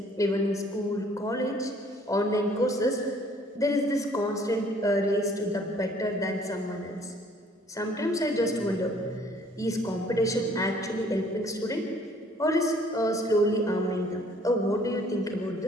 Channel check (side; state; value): both; normal; correlation 0.58